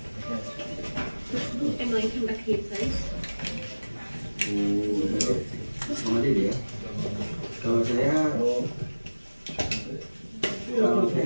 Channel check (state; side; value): inverted; both; correlation -1.00